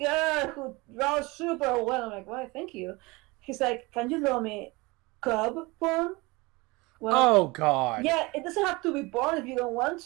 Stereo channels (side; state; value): left; quieter; 24.1 dB